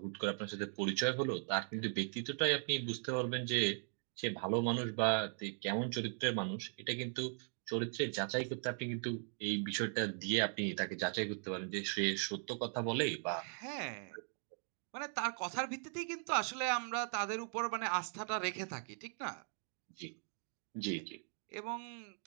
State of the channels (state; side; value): silent; left; 52 dB below the other